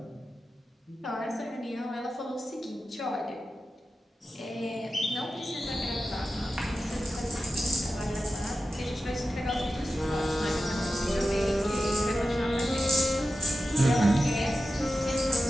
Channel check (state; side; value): normal; both; correlation 0.93